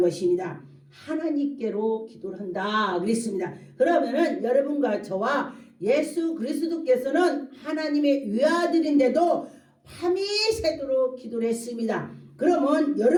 하나님께로 기도를 한다 그랬습니다. 그러면은 여러분과 저와 예수 그리스도께서는 하나님의 외아들인데도 밤이 새도록 기도를 했습니다. 그러면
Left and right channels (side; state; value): both; identical; correlation 1.00